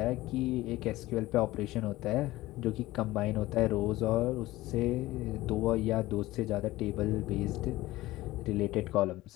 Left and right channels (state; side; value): quieter; right; 17.7 dB